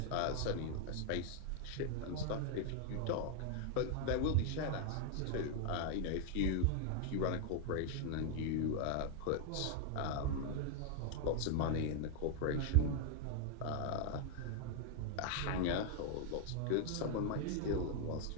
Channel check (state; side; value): different; both; correlation 0.00